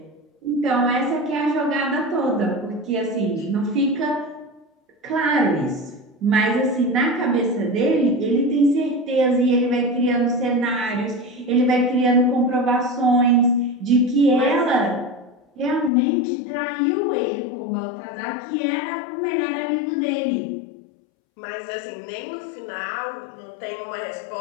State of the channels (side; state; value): right; drops out; at 15.9 s